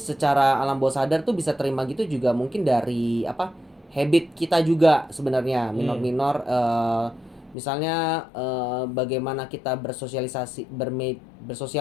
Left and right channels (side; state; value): right; drops out; at 7.6 s